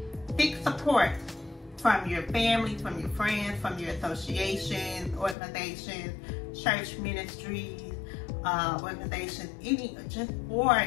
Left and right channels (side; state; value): right; drops out; at 5.4 s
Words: seek support from your family, from your friends, from your associations, organizations, church ministries, organizations, or